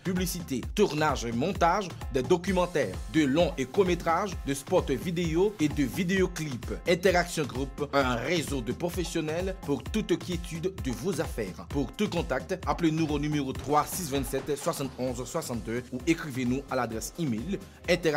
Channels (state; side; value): identical; both; correlation 1.00